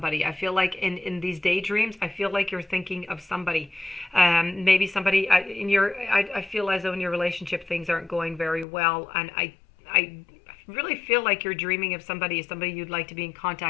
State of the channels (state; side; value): drops out; right; at 8.7 s